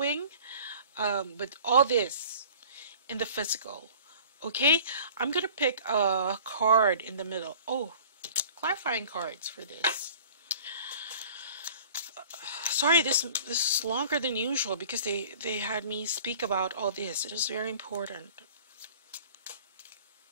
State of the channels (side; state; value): both; inverted; correlation -0.47